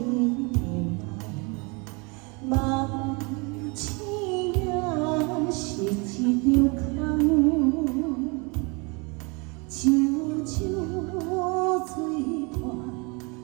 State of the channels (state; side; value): quieter; left; 30.3 dB